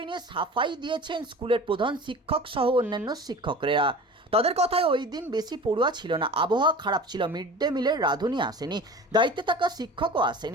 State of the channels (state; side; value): normal; both; correlation 0.38